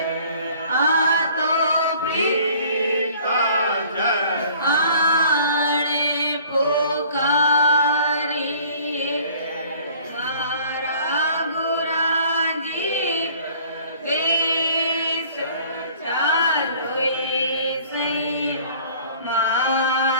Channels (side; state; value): both; inverted; correlation -0.52